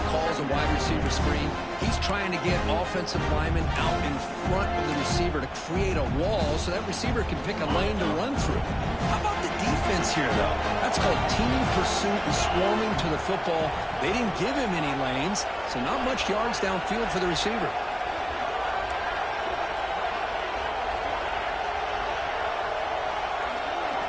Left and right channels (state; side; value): identical; both; correlation 1.00